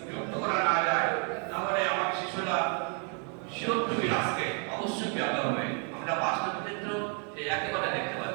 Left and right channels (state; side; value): quieter; left; 38.4 dB